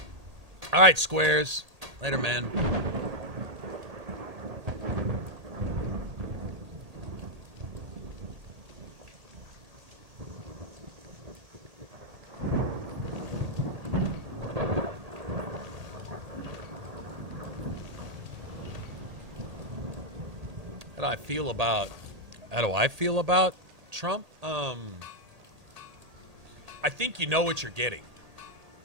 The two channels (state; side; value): late; left; 1.8 ms